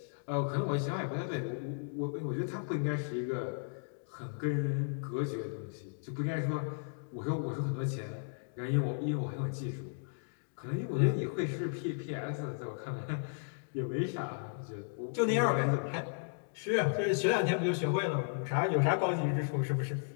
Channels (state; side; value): silent; right; digital silence